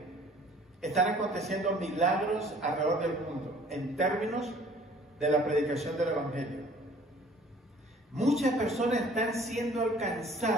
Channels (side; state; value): both; normal; correlation 0.53